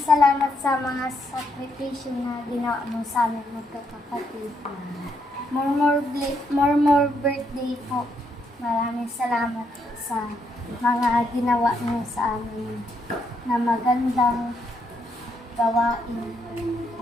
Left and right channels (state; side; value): normal; both; correlation 0.76